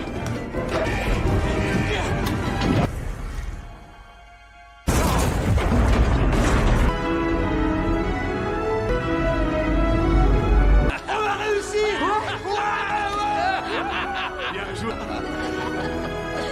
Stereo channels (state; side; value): identical; both; correlation 1.00